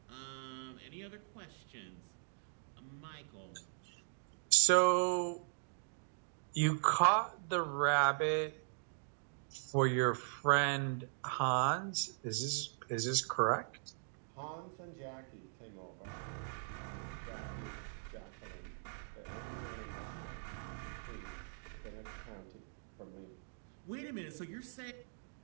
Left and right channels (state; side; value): silent; left; digital silence